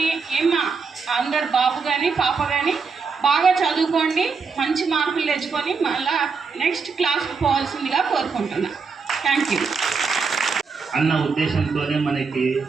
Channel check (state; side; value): quieter; left; 5.1 dB